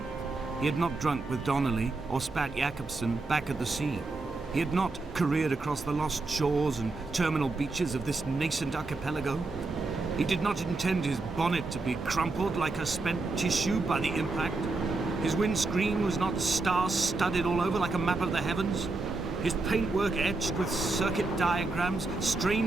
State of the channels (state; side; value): quieter; left; 3.5 dB